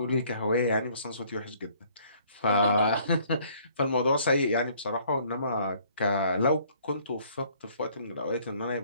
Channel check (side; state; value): both; inverted; correlation -0.61